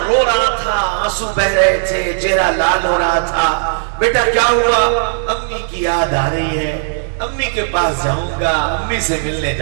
رو رہا تھا، آنسو بہ رہے تھے، چہرہ لال ہو رہا تھا۔ بیٹا کیا ہوا؟ امی کی یاد آ رہی ہے، امی کے پاس جاؤں گا، امی سے ملنے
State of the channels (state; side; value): silent; left; digital silence